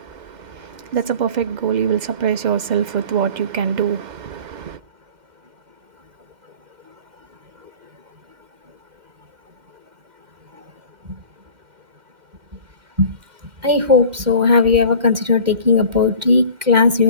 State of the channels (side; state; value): left; late; 2.1 ms